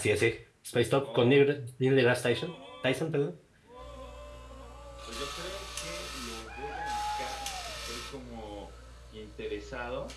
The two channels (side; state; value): both; identical; correlation 1.00